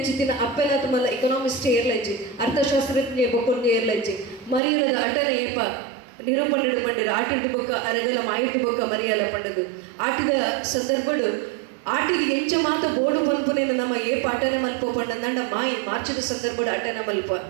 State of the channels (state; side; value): drops out; left; at 4.6 s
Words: ಅಪ್ಪೆಲಾತ ಮಲ್ಲ ಎಕನಾಮಿಸ್ಟ್ ಏರ್ಲಜ್ಜಿ ಅರ್ಥಶಾಸ್ತ್ರಜ್ಞ ಬೊಕ್ಕೊಂದು ಏರ್ಲಜ್ಜಿ ಮರಿಯಲದ ಅಟನ ಏಪ ನಿರೂಪಣೆಡು ಪಂಡರು ಆಟಿಡು ಬೊಕ್ಕ ಅರಗಲ ಮಾಯಿಟ್ಟು ಬೊಕ್ಕ ಮರಿಯಲ ಪಂಡದು ಆಟಿದ ಸಂದರ್ಭಡು ಆಟಿಗೆ ಎಂಚ ಮಾತ ಬೋಡು ಪನ್ಪುನೇನ ನಮ್ಮ ಏಪ ಅಟನ ಮಲ್ಪ ಪಂಡಂದಂಡ ಮಾಯಿ ಮಾರ್ಚದ ಸಂದರ್ಭಡು ಅಟನ ಮಲ್ಪ